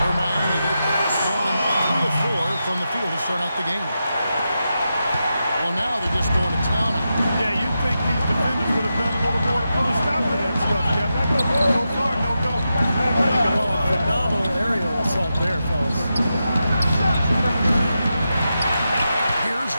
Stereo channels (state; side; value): inverted; both; correlation -0.88